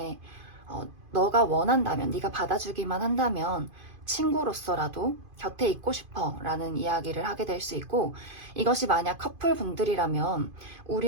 너가 원한다면, 네가 받아주기만 한다면 친구로서라도 곁에 있고 싶어 라는 이야기를 하게 될 수 있고, 이것이 만약 커플분들이라면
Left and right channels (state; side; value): late; left; 2.5 ms